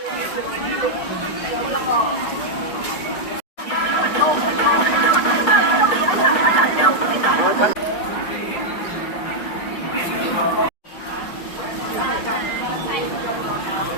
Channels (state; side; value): late; right; 5.1 ms